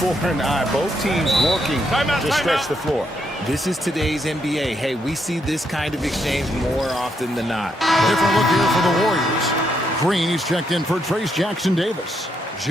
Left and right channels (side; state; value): both; normal; correlation 0.77